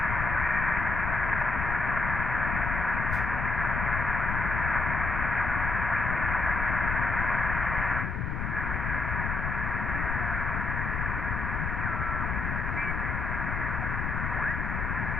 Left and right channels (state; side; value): noise; left; rumble, 2 dB below the sound